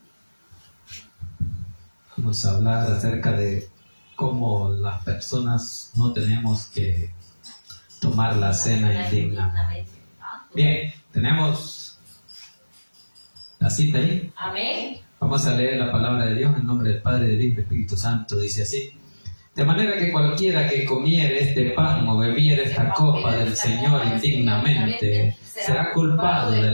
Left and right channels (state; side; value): inverted; both; correlation -1.00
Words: Vamos a hablar acerca de cómo las personas no tenemos que tomar la cena indignamente. Bien, tenemos la cita ahí. Amén. Vamos a leer la palabra de Dios en nombre del Padre, del Hijo y del Espíritu Santo. Dice así: de manera que cualquiera que comiere este pan o bebiere esta copa del Señor indignamente será culpado